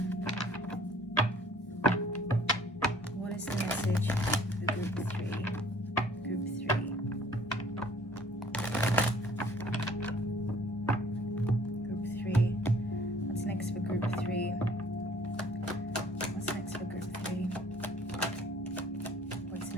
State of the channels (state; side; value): normal; both; correlation 0.55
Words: What is the message for group 3? Group 3. Group 3. What's next for group 3? What's next for group 3? What's